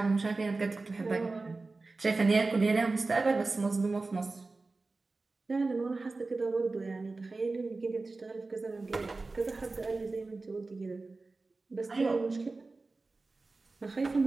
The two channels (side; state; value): left; quieter; 3.6 dB